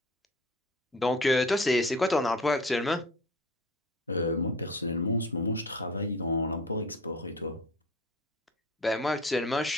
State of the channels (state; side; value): normal; both; correlation 0.40